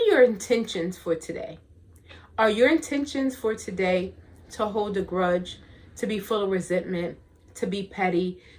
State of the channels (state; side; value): identical; both; correlation 1.00